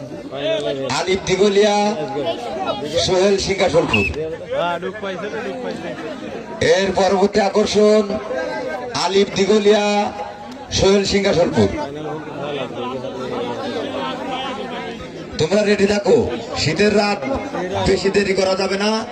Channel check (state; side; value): identical; both; correlation 1.00